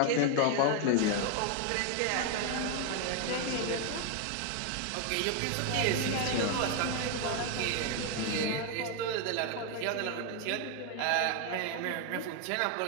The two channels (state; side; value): different; both; correlation 0.01